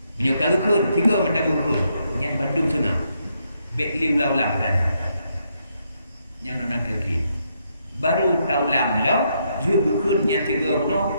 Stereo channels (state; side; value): inverted; both; correlation -0.77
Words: Menyokal kun, tiga mentang kun. Yang Bandung sana. Bek liu laulang kan. Yang nona lagi. Baru taulang lo, juga kun yang tiga no,